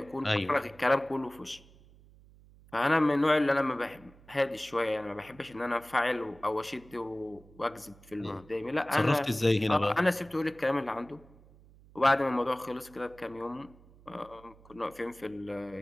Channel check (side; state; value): right; noise; hum, 25 dB below the sound